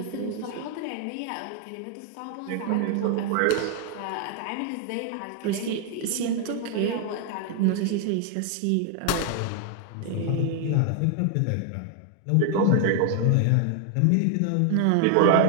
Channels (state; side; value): different; both; correlation 0.00